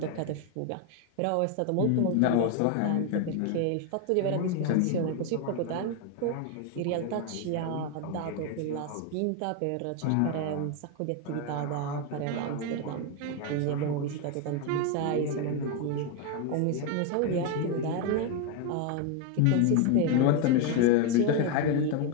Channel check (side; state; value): both; different; correlation 0.01